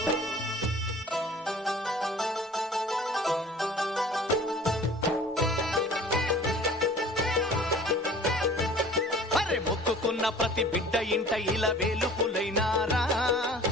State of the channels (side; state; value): both; normal; correlation 0.46